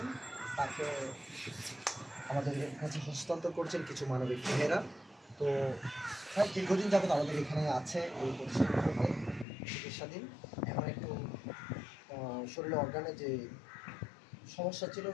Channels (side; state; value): right; drops out; at 9.5 s